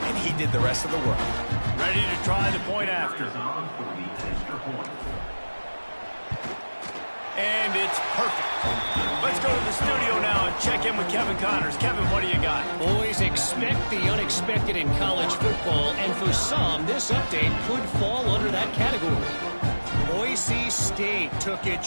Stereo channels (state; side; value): inverted; both; correlation -1.00